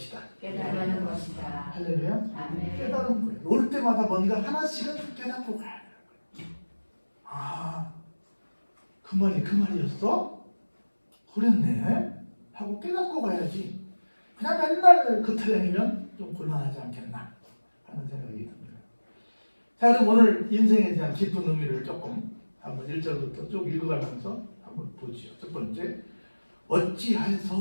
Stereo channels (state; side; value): inverted; both; correlation -1.00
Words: 깨달은 것이다. 할렐루야. 아멘. 깨달은 거예요. 올 때마다 뭔가 하나씩은 깨닫고 가야 돼요. 아, 그 말이었어? 그랬네? 하고 깨닫고 가야지. 그냥 맨날 그 타령이면 좀 곤란하지 않겠나 하는 생각이 듭니다. 자, 그럼 오늘 인생에 대한 깊은 의미를 조금 한번 1절부터 쭉 읽어가면서 한번 보지요. 첫 번째,